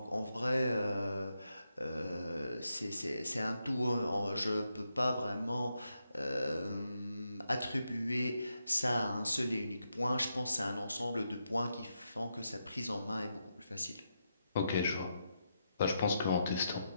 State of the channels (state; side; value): inverted; both; correlation -0.84